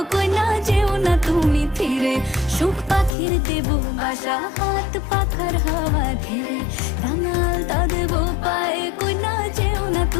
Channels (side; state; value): right; drops out; at 3.1 s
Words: কইনা যেও না তুমি ফিরে। সুখ পাখির দেব বাসা, হাত পাখার হাওয়া ঘিরে, রাঙাল তা দেব পায়ে, কইনা যেও না